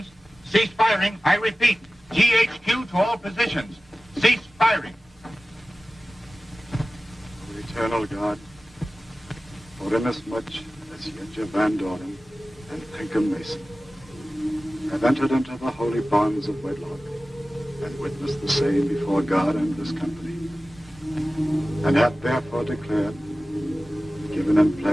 Cease firing. I repeat, GHQ to all positions. Cease firing. O eternal God, for inasmuch as Yetja Van Doren and Pinkham Mason have entered into the holy bonds of wedlock and witnessed the same before God and this company, and have therefore declared, given and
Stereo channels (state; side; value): normal; both; correlation 0.96